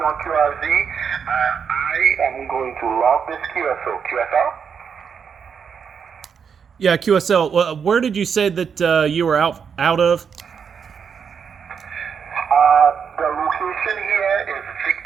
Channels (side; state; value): left; quieter; 6.8 dB